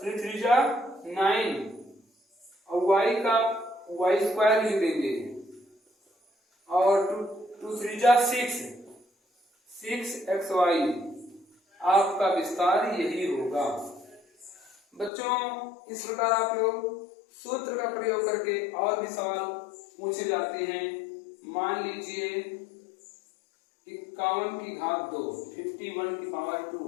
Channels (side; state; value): right; drops out; at 15.1 s